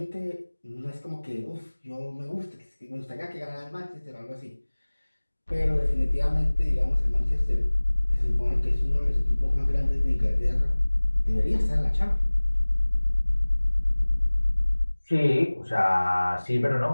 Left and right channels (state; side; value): inverted; both; correlation -1.00